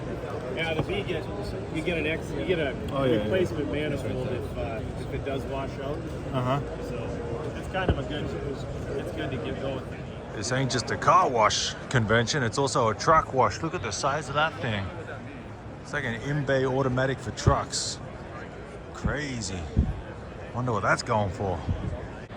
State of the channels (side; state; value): both; identical; correlation 1.00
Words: Yeah, the B gets you get a replacement manifold if it does wash out. So it's kind of it's good to get going. This ain't just a car wash convention, it's also a truck wash. Look at the size of that thing. It's like an in-bay automatic for trucks. Crazy. Wonder what that's going for.